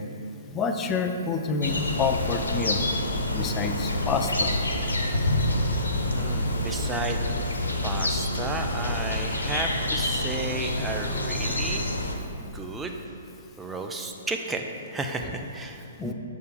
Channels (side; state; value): both; inverted; correlation -0.39